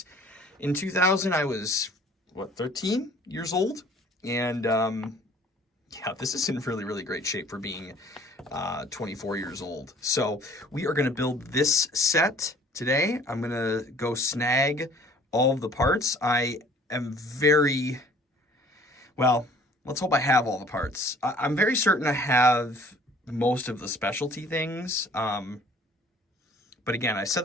in 2000 I was 13 years old, and yeah, this is in really great shape for being 24 years old. So we are going to build this set today. I'm going to go snag all of the parts. I am let's hope I have all the parts. I'm very certain I have most of the specialty things. But again, I said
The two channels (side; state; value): both; normal; correlation 0.53